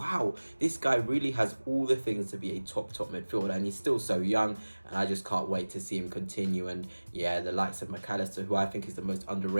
this guy really has all the things to be a top midfielder, and he's still so young, and I just can't wait to see him continue. And yeah, the likes of Mac Allister, who I think is the most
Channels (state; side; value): inverted; both; correlation -1.00